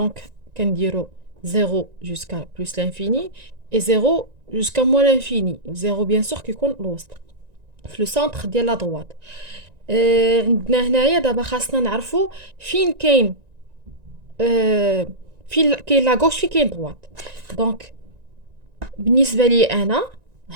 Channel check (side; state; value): left; late; 1.9 ms